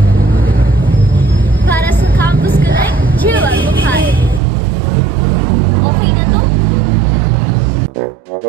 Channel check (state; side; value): drops out; left; at 4.4 s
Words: Para sa Campus Connect, Jiwa Mukhay. Okay na to?